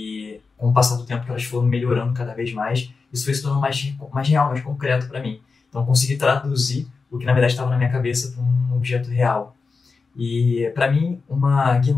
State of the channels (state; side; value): quieter; right; 4.6 dB